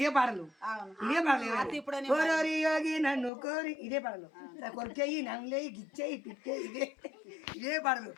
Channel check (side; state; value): right; drops out; at 3.3 s